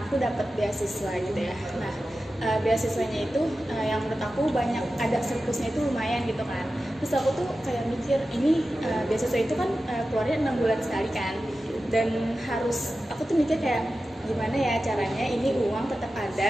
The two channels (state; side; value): normal; both; correlation 0.93